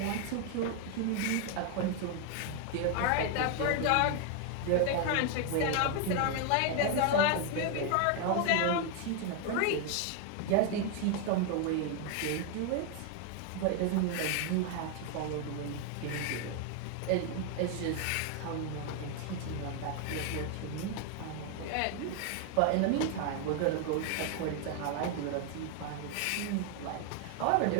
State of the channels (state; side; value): different; both; correlation 0.01